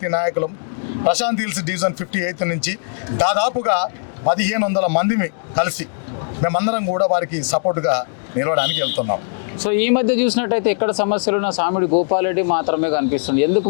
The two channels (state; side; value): silent; right; 66 dB below the other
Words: నాయకులు ప్రశాంత్ హిల్స్ డివిజన్ 58 నుంచి దాదాపుగా 1500 మందిని కలిసి మేమందరం కూడా వారికి సపోర్ట్గా నిలవడానికి వెళ్తున్నాం. సో ఈ మధ్య చూసినట్టయితే ఎక్కడ సమస్యలున్న సామిడి గోపాల్ రెడ్డి మాత్రమే కనిపిస్తుంది. ఎందుకు